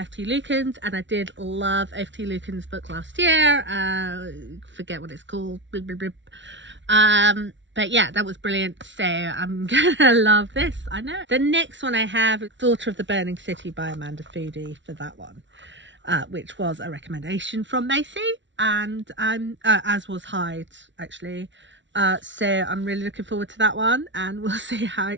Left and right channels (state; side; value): late; left; 0.54 ms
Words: F.T. Lukens, and I did love F.T. Lukens' book last year. Forget what it's called. But yeah, that was brilliant, so I'm gonna love this, I know. The next one I have is Daughter of the Burning City by Amanda Foody for that one, which was a recommendation from Macy, and as was Hyde actually. So I'm really looking forward to that one, and we'll see how